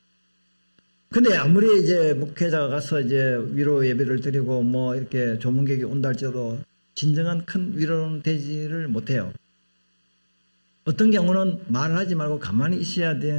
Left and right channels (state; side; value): inverted; both; correlation -1.00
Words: 근데 아무리 이제 목회자가 가서 이제 위로 예배를 드리고 뭐 이렇게 조문객이 온다 할지라도 진정한 큰 위로는 되지를 못해요. 어떤 경우는 말을 하지 말고 가만히 있어야